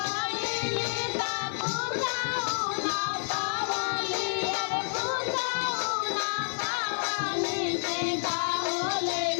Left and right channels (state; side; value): silent; right; 58 dB below the other